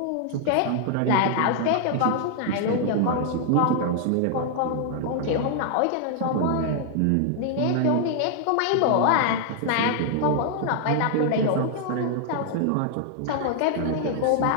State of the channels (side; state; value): both; different; correlation 0.00